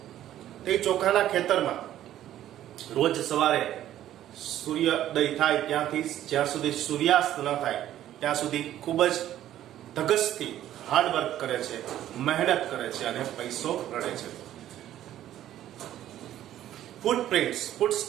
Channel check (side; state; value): left; quieter; 12.3 dB